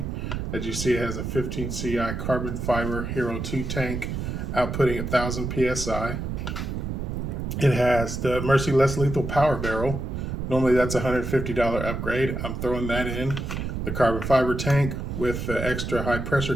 As you see, it has a 15 CI carbon fiber Hero 2 tank outputting 1,000 PSI. It has the Mercy Less Lethal Power Barrel. Normally that's a $150 upgrade. I'm throwing that in. The carbon fiber tank with the extra high pressure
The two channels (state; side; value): noise; right; rumble, 4 dB below the sound